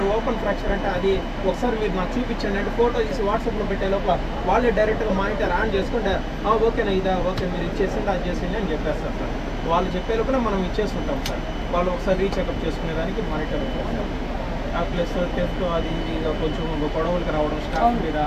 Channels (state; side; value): identical; both; correlation 1.00